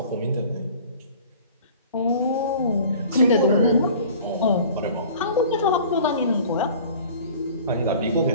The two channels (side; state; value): both; inverted; correlation -0.46